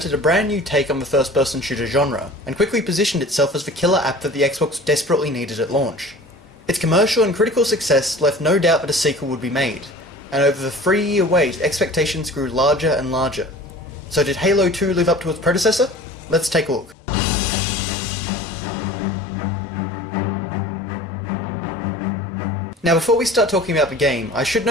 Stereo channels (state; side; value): normal; both; correlation 0.42